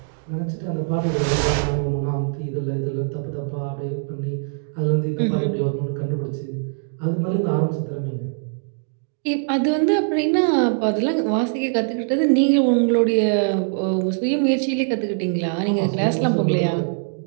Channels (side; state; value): left; silent; digital silence